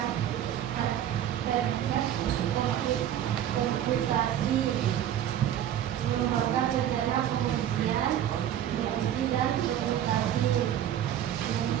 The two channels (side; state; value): left; quieter; 10.8 dB